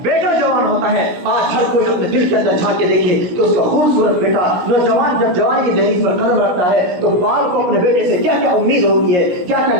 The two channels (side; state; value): left; late; 16 ms